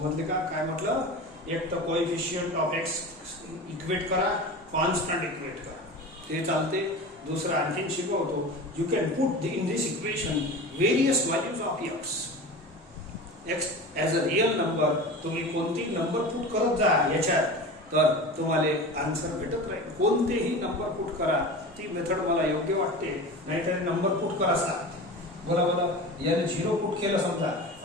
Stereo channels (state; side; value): normal; both; correlation 0.32